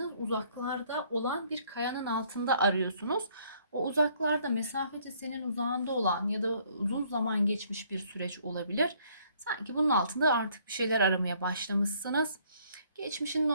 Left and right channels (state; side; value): inverted; both; correlation -0.63